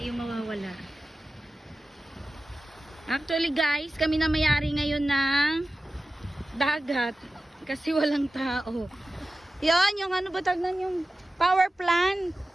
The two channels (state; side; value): normal; both; correlation 0.94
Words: yung mawawala. Actually guys, kami na may-ari ngayon ng dagat kasi walang tao. Yan, yung ano ba tagnan yung power plant.